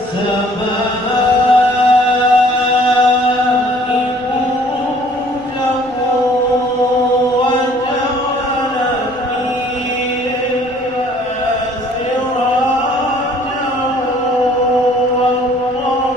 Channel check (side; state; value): left; noise; rumble, 26 dB below the sound